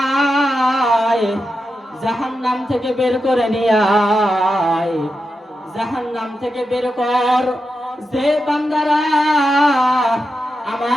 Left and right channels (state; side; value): normal; both; correlation 0.88